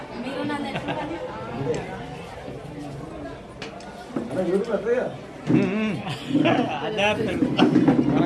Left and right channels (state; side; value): identical; both; correlation 1.00